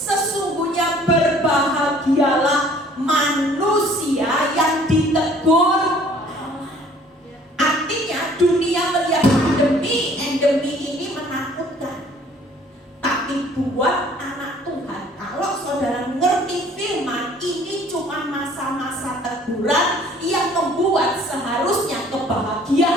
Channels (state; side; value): normal; both; correlation 0.55